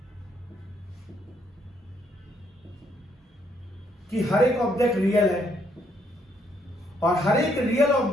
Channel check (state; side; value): normal; both; correlation 0.71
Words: कि हर एक ऑब्जेक्ट रियल है, और हर एक रियल